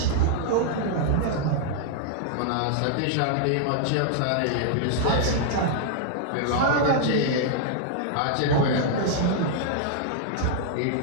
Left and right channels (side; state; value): both; different; correlation -0.01